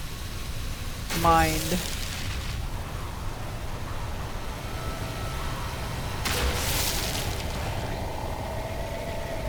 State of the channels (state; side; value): identical; both; correlation 1.00